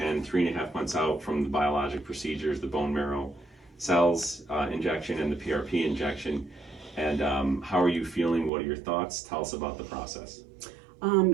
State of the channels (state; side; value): drops out; left; at 8.5 s